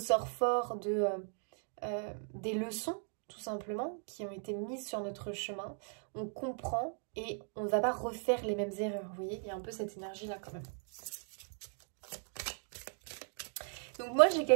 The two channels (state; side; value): silent; left; 53 dB below the other